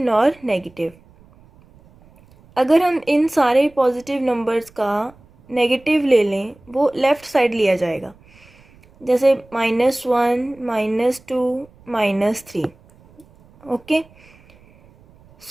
negative. अगर हम इन सारे positive numbers का negative ले लें वो left side लिया जाएगा, जैसे -1, -2, -3. Okay,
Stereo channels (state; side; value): noise; right; rumble, 28 dB below the sound